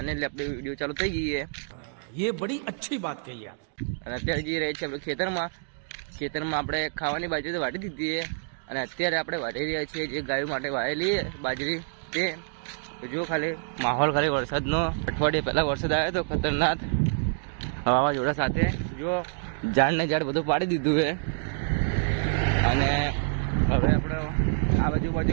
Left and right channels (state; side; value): silent; left; digital silence